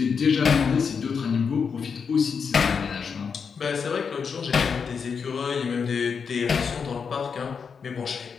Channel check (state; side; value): quieter; right; 6.1 dB